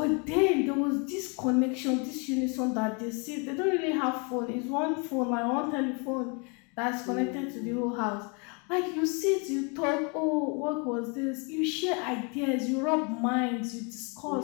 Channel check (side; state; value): right; quieter; 33.8 dB